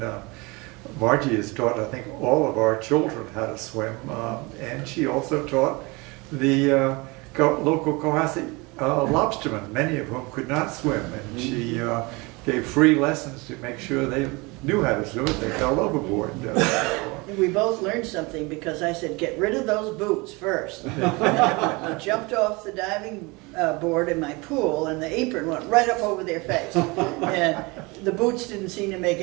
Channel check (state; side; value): quieter; left; 25.9 dB